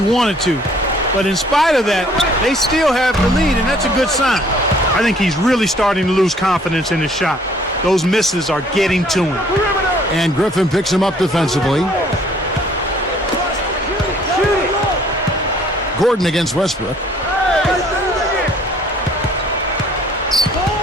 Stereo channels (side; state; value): both; normal; correlation 0.58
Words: to. But in spite of that, they still have the lead, and that's a good sign. I think he's really starting to lose confidence in his shot. Those misses are getting to him. And Griffin picks him up defensively. Gordon against Westbrook.